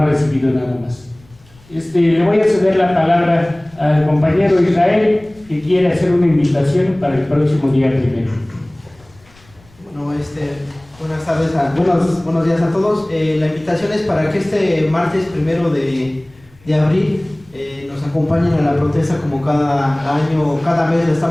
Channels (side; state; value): left; noise; rumble, 28 dB below the sound